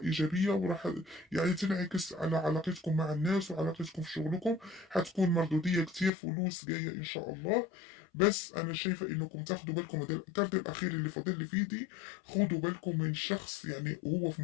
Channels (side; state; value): right; drops out; at 6.1 s